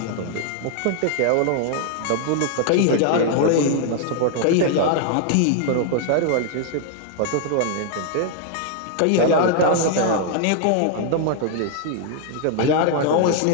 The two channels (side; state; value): both; different; correlation 0.00